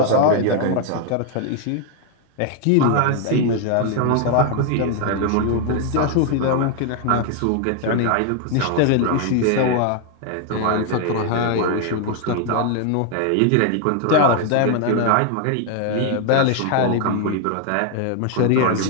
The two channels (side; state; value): both; different; correlation 0.01